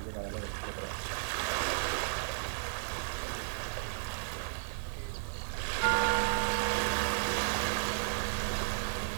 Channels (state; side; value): silent; left; digital silence